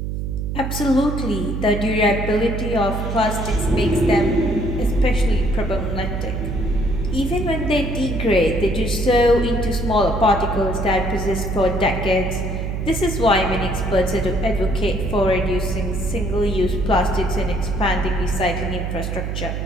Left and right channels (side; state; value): right; noise; hum, 3 dB below the sound